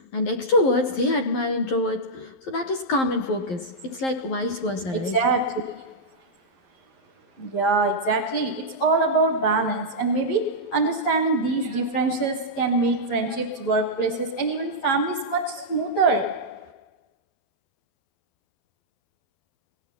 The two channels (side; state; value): right; late; 11 ms